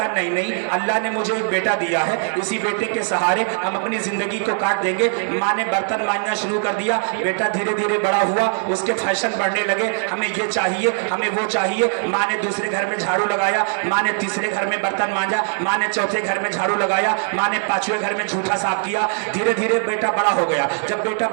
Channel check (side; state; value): left; silent; digital silence